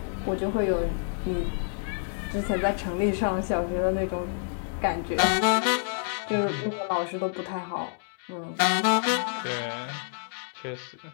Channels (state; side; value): silent; right; digital silence